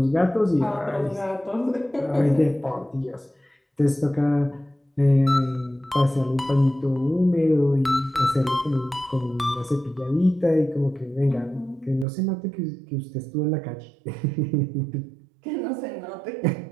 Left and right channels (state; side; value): drops out; left; at 12.1 s